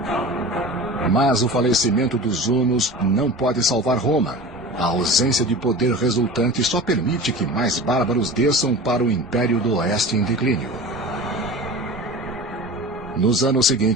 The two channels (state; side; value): normal; both; correlation 0.35